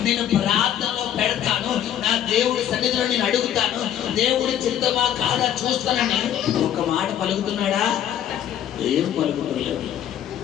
నేను ప్రార్థనలో పెడతాను, నా దేవుడి సన్నిధిలో నేను అడుగుతాను, దేవుడి చిత్తమా కాదా చూస్తానని ఒక మాట పలుకుతున్నాడా? ఏం పలుకుతలేదు.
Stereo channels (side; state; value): right; quieter; 10.5 dB